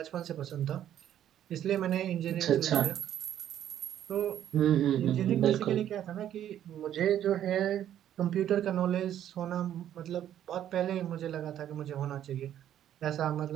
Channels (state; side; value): quieter; left; 11.0 dB